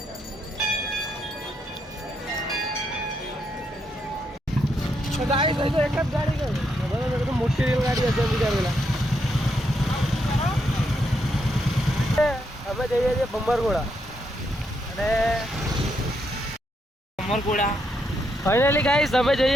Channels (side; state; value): both; normal; correlation 0.78